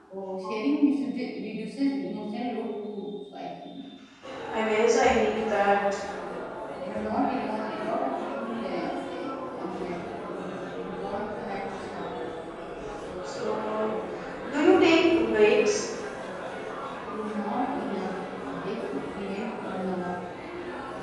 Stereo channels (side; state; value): both; identical; correlation 1.00